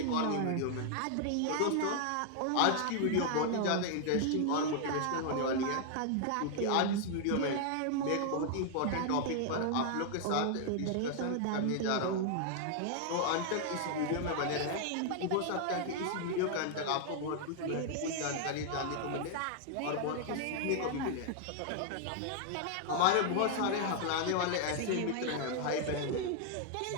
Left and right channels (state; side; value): different; both; correlation 0.00